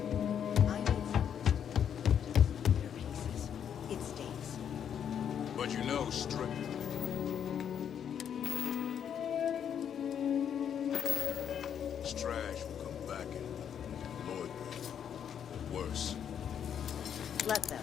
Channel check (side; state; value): right; quieter; 8.5 dB